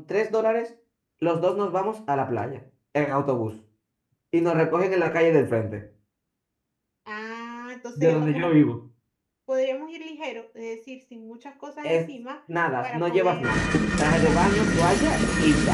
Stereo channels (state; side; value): identical; both; correlation 1.00